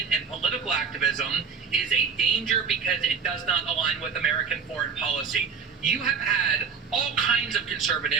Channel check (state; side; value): quieter; left; 6.1 dB